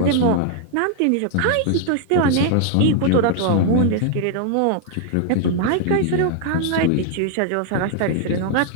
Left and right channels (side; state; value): both; different; correlation 0.00